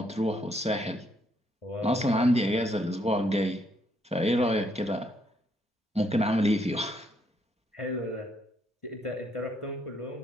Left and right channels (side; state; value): both; normal; correlation 0.73